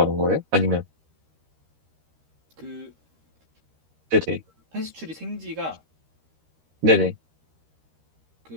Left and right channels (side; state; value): left; late; 13 ms